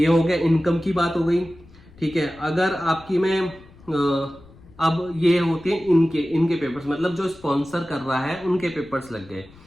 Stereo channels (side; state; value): left; noise; rumble, 24 dB below the sound